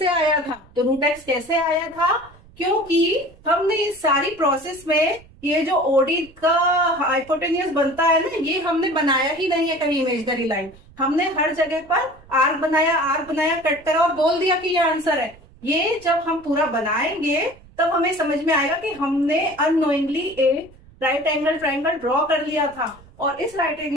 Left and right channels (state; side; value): noise; right; rumble, 25 dB below the sound